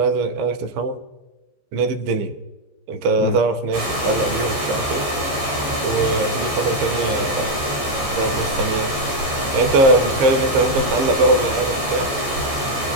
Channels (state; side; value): late; left; 14 ms